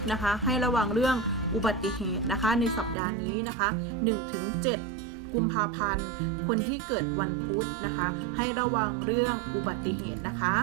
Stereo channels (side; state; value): left; drops out; at 3.0 s